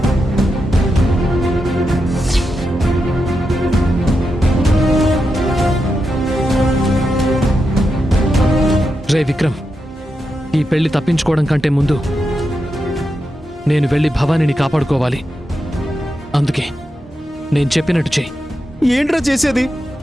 రే విక్రమ్, ఈ పెళ్లి తప్పించుకోవడం కంటే ముందు నేను వెళ్ళి భవానీని కాపాడుకోవాలి. అందుకే నేను చెప్పినట్టు చెయ్యి. ఏంట్రా చేసేది?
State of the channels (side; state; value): both; normal; correlation 0.87